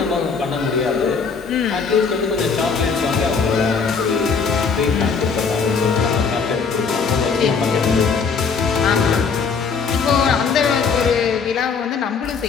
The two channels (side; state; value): right; quieter; 5.4 dB